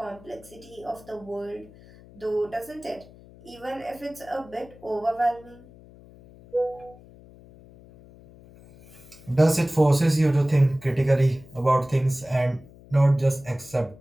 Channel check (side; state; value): left; noise; hum, 22 dB below the sound